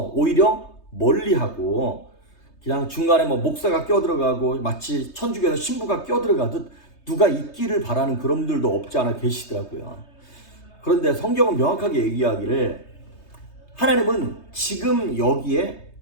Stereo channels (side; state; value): right; late; 3.2 ms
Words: 오히려 멀리하고 그냥 중간에 목사가 껴들어가고 마치 천주교에서 신부가 껴들어가듯 누가 있기를 바라는 그런 분들도 없지 않아 계시더라고요. 그런데 성경은 명확하게 얘기하기를 하나님은 지금 여기에